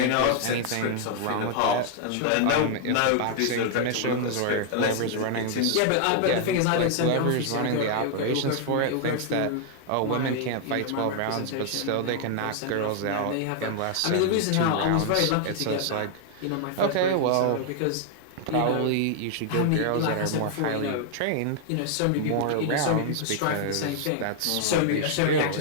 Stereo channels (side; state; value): both; different; correlation 0.00